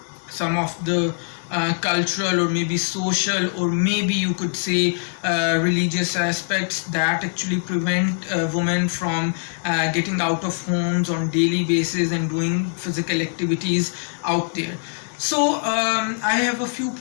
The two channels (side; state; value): right; silent; digital silence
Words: some of the cultural or maybe social or maybe you could say religious aspects that actually prevent women from getting out of homes on daily basis and doing physical activities out there. So I have a few